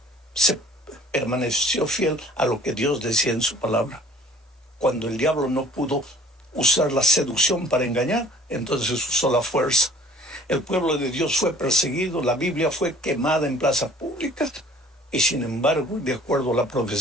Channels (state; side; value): normal; both; correlation 0.52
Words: se permaneció fiel a lo que Dios decía en su palabra. Cuando el diablo no pudo usar la seducción para engañar, entonces usó la fuerza. El pueblo de Dios fue perseguido, la Biblia fue quemada en plazas públicas, y sin embargo, de acuerdo a la